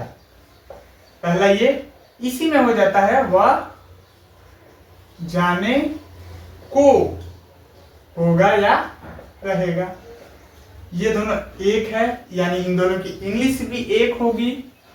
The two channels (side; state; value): both; identical; correlation 1.00